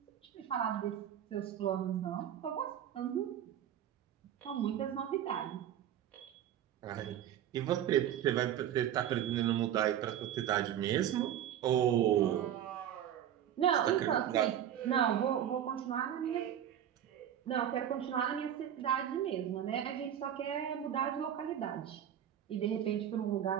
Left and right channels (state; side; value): quieter; left; 10.3 dB